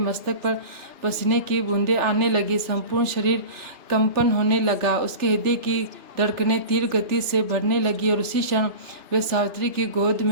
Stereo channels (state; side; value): late; left; 3.3 ms